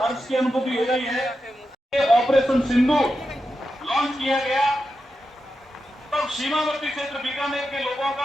हर्ष की अनुभूति हो रही है। ऑपरेशन सिंधु लॉन्च किया गया, तब सीमावर्ती क्षेत्र बीकानेर के लोगों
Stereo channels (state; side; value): normal; both; correlation 0.89